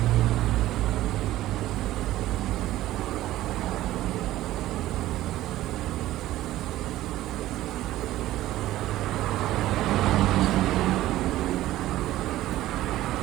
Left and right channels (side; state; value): left; quieter; 15.1 dB